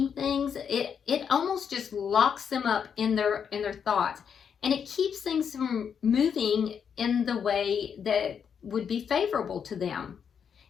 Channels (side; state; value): right; quieter; 7.3 dB